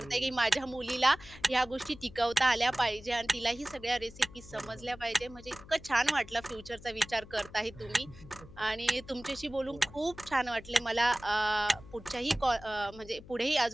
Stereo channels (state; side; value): noise; left; hum, 19 dB below the sound